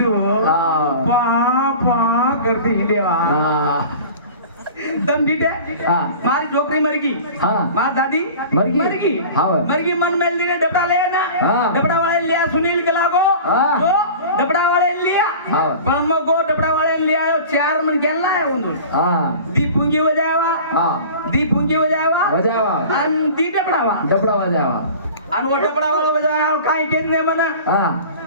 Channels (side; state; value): both; inverted; correlation -0.40